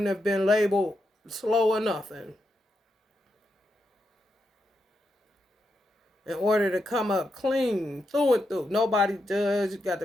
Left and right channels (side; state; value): both; normal; correlation 0.84